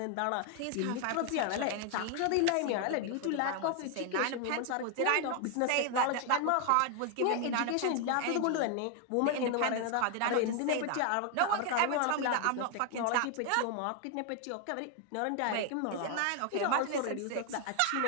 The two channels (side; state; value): both; different; correlation 0.00